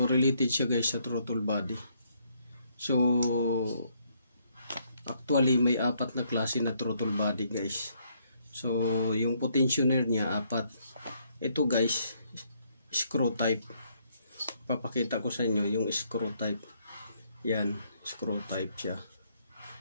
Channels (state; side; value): inverted; both; correlation -0.71